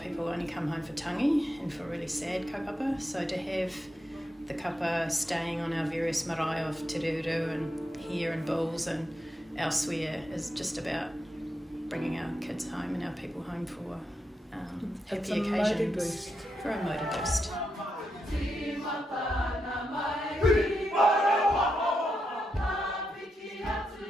only come home for tangi and for really sad kaupapa, so to have the kapa staying on our various marae of Te Reureu and here in Bulls and elsewhere is just about bringing our kids home and our people home for happy occasions. For a motor boost.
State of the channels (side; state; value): both; normal; correlation 0.84